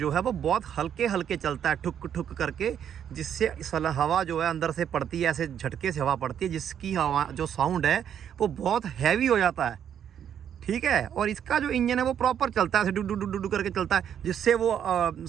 है वो बहुत हल्के हल्के चलता है, ठुक ठुक करके, जिससे हवा जो है अंदर से पड़ती है, ऐसे झटके से हवा पड़ती है, जिसकी हवा जो साउंड है वो बहुत हैवी हो जाता है। ठीक है, और इसका जो इंजन है वो प्रॉपर चलता है, ऐसे डू डू डू डू करके चलता है, जिससे वो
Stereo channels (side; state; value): left; quieter; 9.1 dB